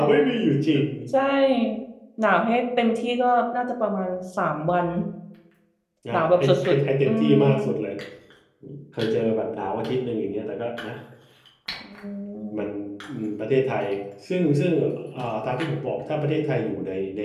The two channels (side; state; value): both; identical; correlation 1.00